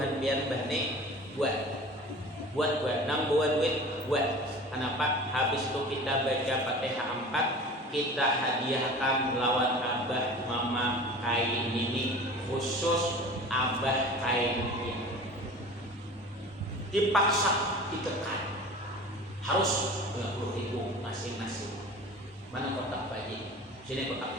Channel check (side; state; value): both; normal; correlation 0.39